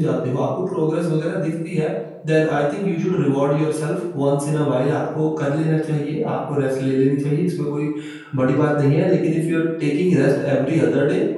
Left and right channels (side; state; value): both; identical; correlation 1.00